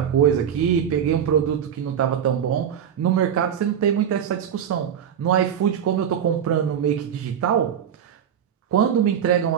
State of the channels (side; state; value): left; quieter; 8.8 dB